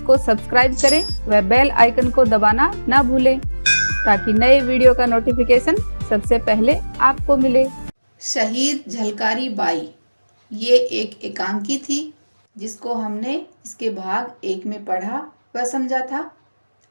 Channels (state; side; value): inverted; both; correlation -1.00